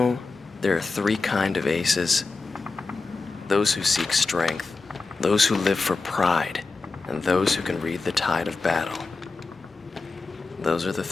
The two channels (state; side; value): quieter; right; 4.0 dB